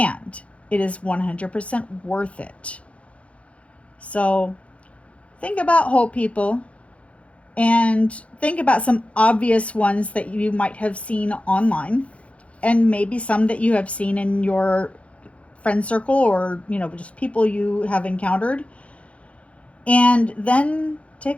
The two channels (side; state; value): right; late; 0.063 ms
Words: it is 100% worth it. So think about whole people and think about some obvious ones that you might have seen online and maybe some that you have seen in your friend circle or, just people you have encountered. And then